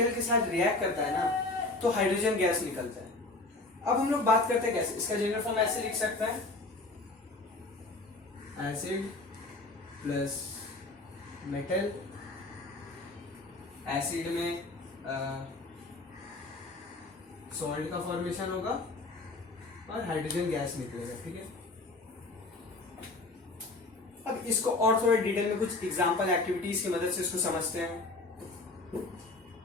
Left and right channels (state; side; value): quieter; right; 3.2 dB